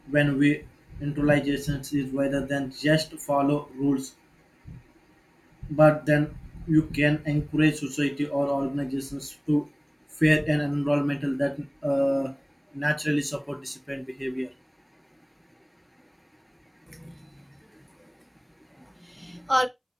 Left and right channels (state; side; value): identical; both; correlation 1.00